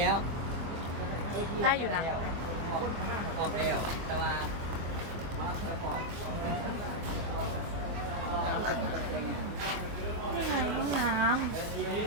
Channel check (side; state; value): left; late; 24 ms